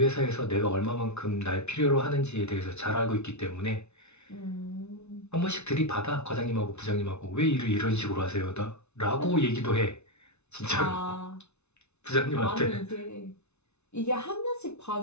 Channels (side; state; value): right; late; 0.81 ms